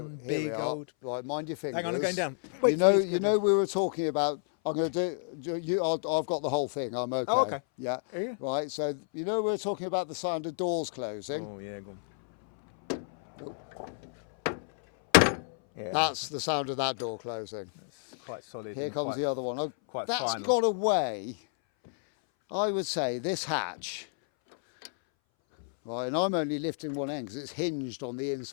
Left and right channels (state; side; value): silent; right; 58 dB below the other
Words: Here big we are. old. Right, mind your fingers. Hang on, I'm going down. You Wait know, for me to you go know, we were talking about. I'm going to do. I've got the whole thing. I'm okay. Oh, okay. Yeah. Are you? Right. So you know, we were talking about the sound of doors closing. Oh yeah, go on. Yeah, That's the sound of that door closing. it's quite solid. Here and comes quite- the other one. Oh, quite that's final. got away. I would say this hatch. Right, and I'm only lifting one end because it's hinged on the